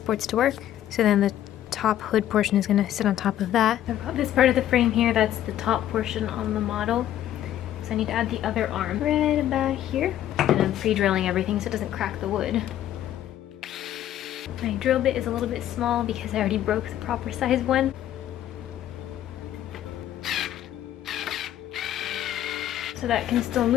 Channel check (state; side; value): quieter; right; 12.0 dB